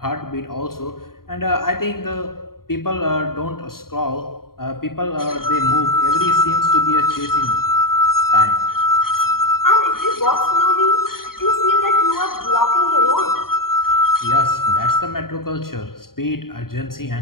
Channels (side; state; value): right; late; 0.93 ms